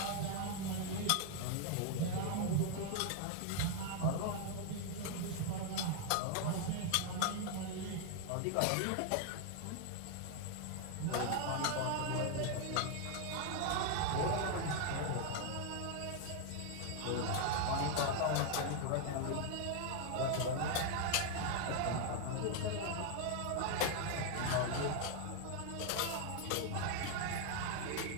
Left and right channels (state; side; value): different; both; correlation 0.00